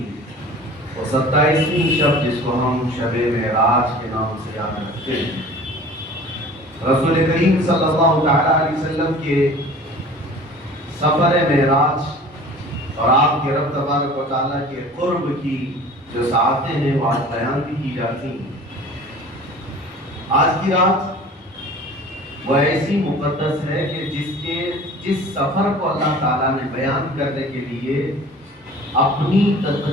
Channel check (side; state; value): both; normal; correlation 0.44